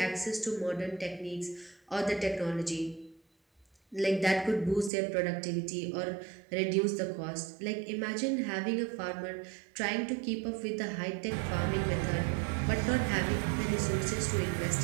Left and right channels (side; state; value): left; drops out; at 4.9 s